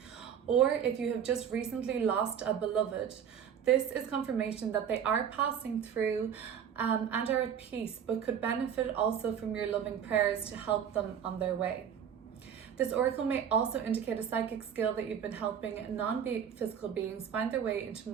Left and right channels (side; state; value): left; quieter; 8.3 dB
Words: Or if you have just recently lost a beloved, this is confirmation that they are passing through and are at peace, but could benefit also from your loving prayers to help them on their way. This oracle may also indicate a psychic skill that you've been helping non-physical beings find their way into